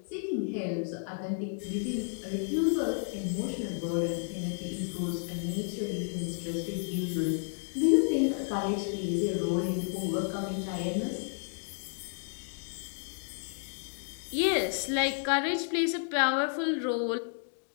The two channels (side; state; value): right; silent; 57 dB below the other